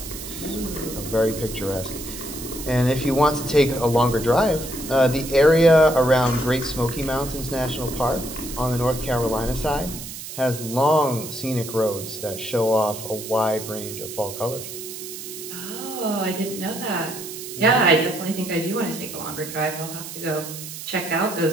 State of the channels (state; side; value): noise; right; hiss, 10 dB below the sound